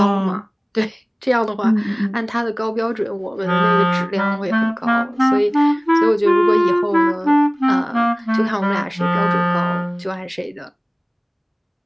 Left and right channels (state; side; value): identical; both; correlation 1.00